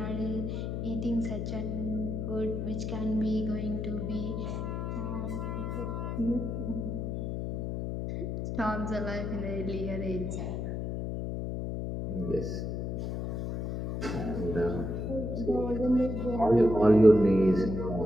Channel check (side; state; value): left; noise; hum, 3 dB below the sound